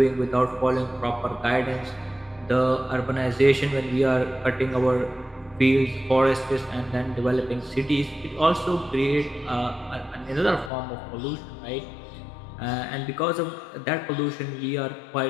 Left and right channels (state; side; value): drops out; right; at 10.7 s